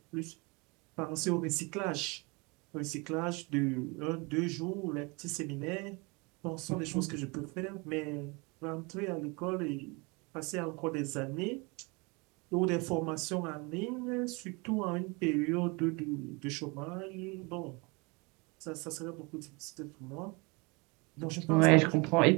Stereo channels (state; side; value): quieter; left; 28.4 dB